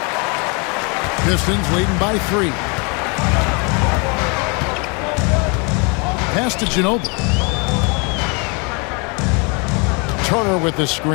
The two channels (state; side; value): quieter; right; 32.4 dB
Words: Pistons leading by 3. Pass to Ginobili. Turner with the